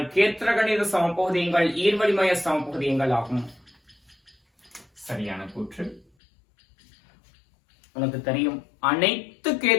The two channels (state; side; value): drops out; right; at 6.1 s